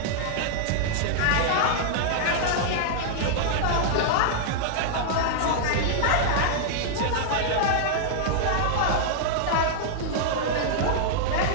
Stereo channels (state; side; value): different; both; correlation -0.01